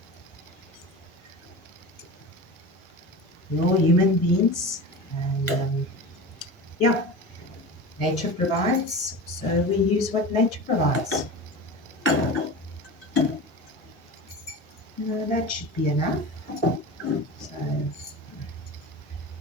We're all human beings, and yeah, nature provides, so we use what nature provides. That should be enough. So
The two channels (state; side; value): normal; both; correlation 0.31